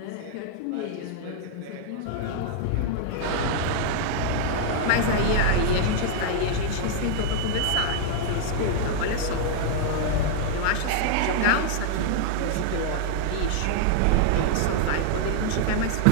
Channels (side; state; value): both; different; correlation 0.00